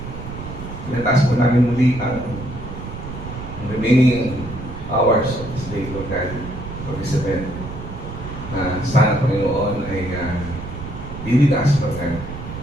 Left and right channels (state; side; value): noise; right; rumble, 9 dB below the sound